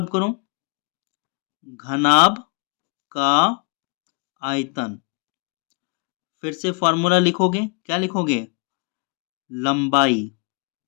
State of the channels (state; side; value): quieter; right; 35.7 dB